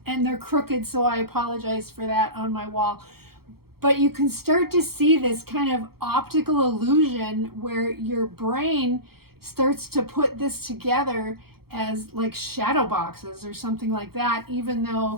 and they're crooked, so I apologize for that on my wall. But you can start to see this kind of optical illusion where your brain starts to put this together as like shadow boxes or something like that, even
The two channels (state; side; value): late; left; 0.95 ms